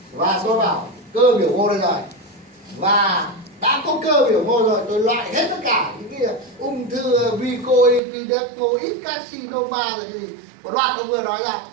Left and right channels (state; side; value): drops out; left; at 8.0 s